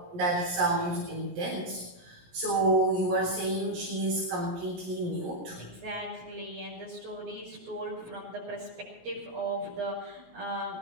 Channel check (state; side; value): late; left; 17 ms